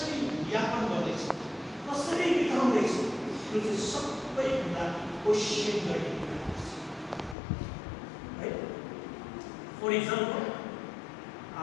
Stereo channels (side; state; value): right; drops out; at 7.4 s